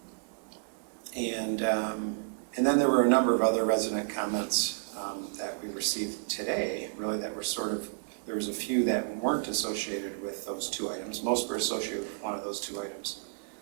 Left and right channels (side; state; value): left; silent; digital silence